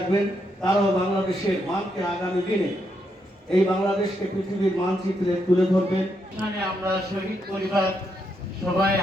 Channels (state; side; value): normal; both; correlation 0.79